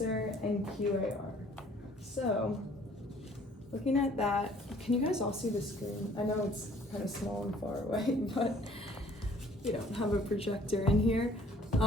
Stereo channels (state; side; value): normal; both; correlation 0.57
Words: and QAR. So looking at that, can you guys all see the screen? I know it's kind of small and far away, but we don't have a projector in here.